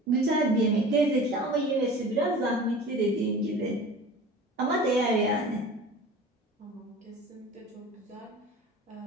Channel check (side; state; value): both; normal; correlation 0.39